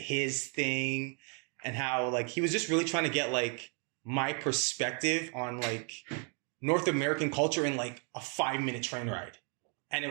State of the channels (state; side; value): quieter; left; 38.3 dB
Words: thing, and how like he was just really trying to get like my perspective on like North American culture in like a 5-minute train ride. And